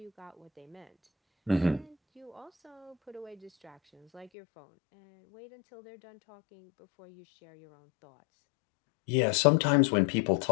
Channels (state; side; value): drops out; right; at 4.3 s